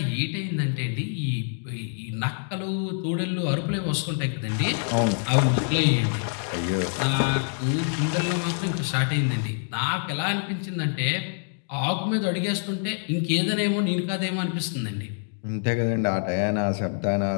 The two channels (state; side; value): silent; right; 61 dB below the other